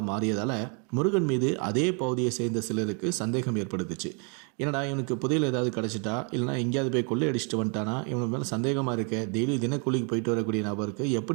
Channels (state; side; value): quieter; left; 37.6 dB